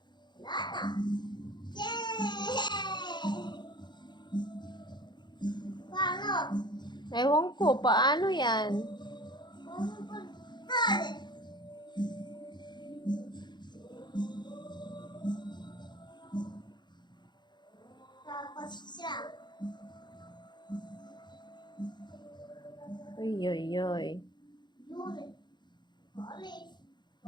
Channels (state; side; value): late; right; 0.21 ms